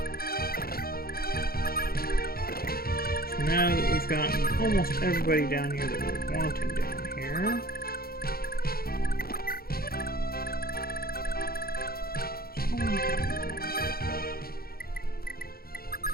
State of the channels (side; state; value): right; late; 0.44 ms